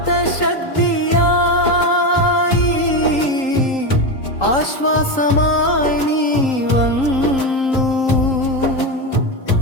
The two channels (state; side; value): late; right; 3.8 ms